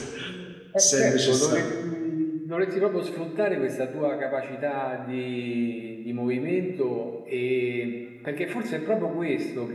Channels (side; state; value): both; identical; correlation 1.00